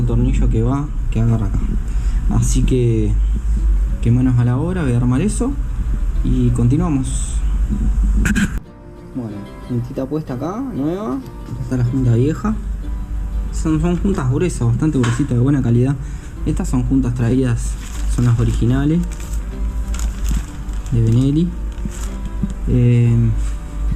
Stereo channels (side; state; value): both; identical; correlation 1.00